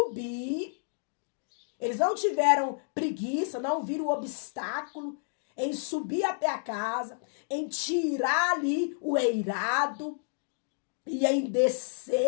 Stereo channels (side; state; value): right; silent; digital silence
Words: Eles não tiveram preguiça, não viram obstáculo em subir até a casa, em tirar ali o eirado e em